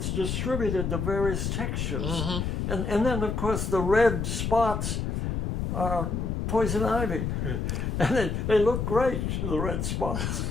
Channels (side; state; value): left; noise; rumble, 1 dB below the sound